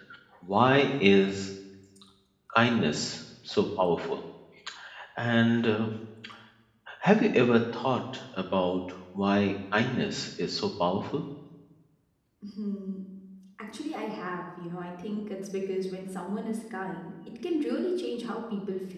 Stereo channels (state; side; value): identical; both; correlation 1.00